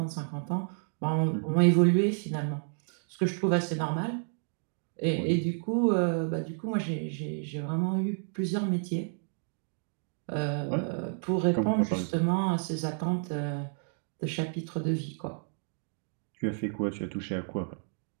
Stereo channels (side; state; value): left; silent; 57 dB below the other